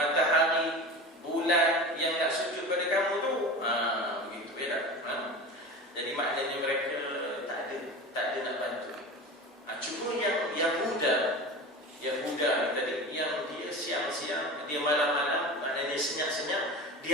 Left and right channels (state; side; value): normal; both; correlation 0.32